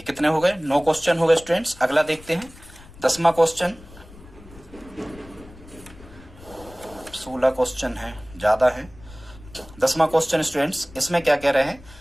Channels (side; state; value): left; noise; rumble, 20 dB below the sound